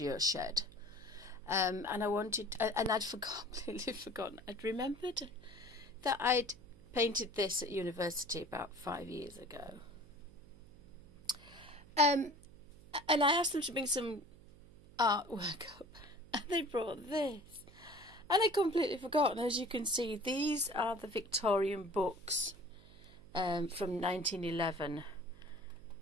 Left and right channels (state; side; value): noise; right; hum, 22 dB below the sound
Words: shed, and I wanted, and I'd completely forgotten. I'd remembered that I'd painted this at university about 5 years ago, and I asked them to bring some artwork up, and they brought this. And I completely forgotten. As you can see, these are the Victorian books from 1911,